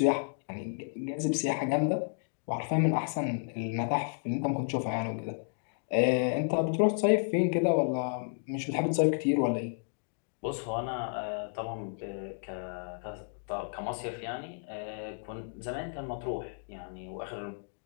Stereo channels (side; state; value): right; silent; digital silence